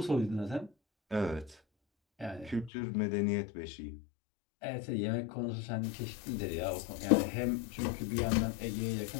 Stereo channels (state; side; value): drops out; right; at 2.7 s